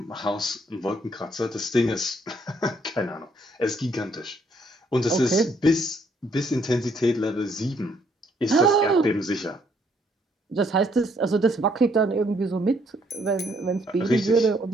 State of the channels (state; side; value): normal; both; correlation 0.68